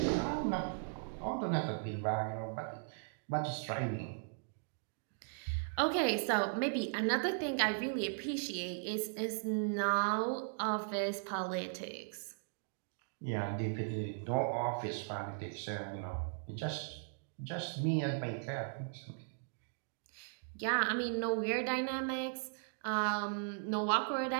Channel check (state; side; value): silent; left; digital silence